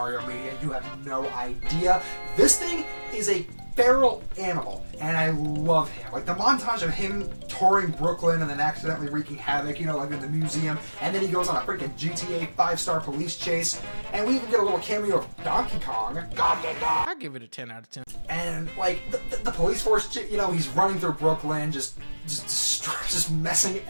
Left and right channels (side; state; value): both; inverted; correlation -1.00